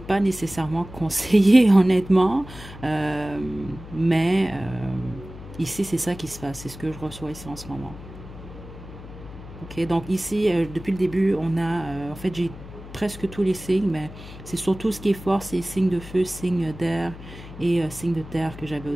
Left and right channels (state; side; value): noise; left; hum, 15 dB below the sound